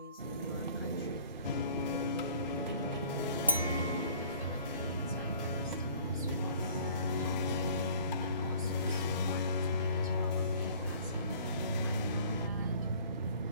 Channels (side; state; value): both; inverted; correlation -0.52